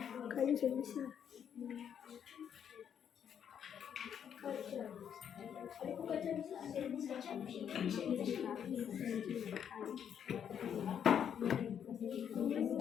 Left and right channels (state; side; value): quieter; right; 8.5 dB